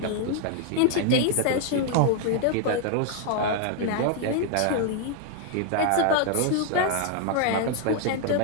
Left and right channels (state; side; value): different; both; correlation 0.00